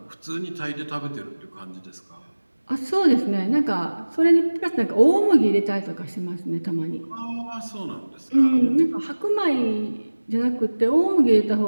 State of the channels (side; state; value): both; inverted; correlation -1.00